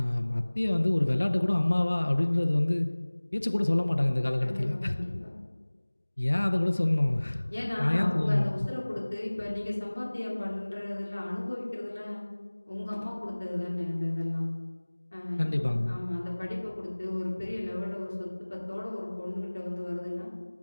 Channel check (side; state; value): both; inverted; correlation -1.00